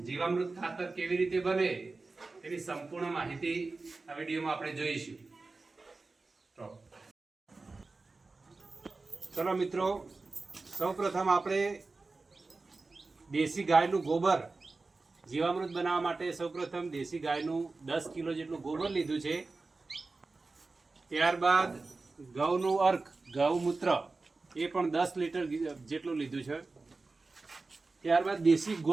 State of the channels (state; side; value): quieter; left; 3.7 dB